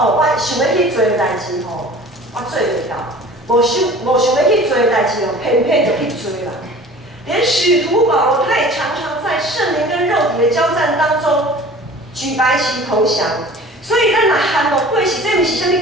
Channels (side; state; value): both; normal; correlation 0.44